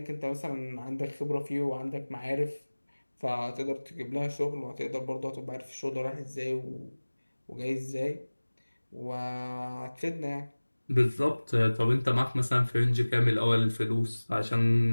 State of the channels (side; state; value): both; inverted; correlation -1.00